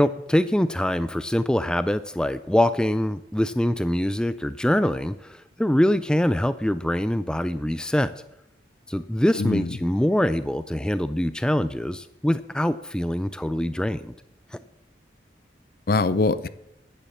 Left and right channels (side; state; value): both; normal; correlation 0.90